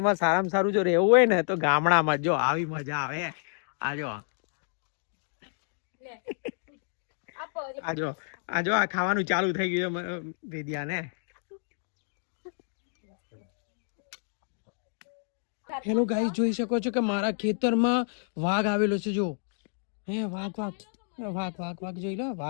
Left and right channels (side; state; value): right; silent; digital silence